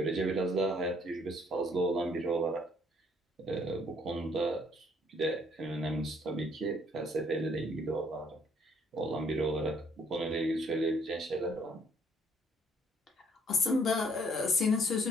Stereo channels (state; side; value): normal; both; correlation 0.65